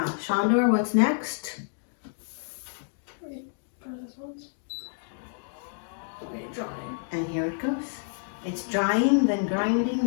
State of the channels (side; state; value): right; silent; digital silence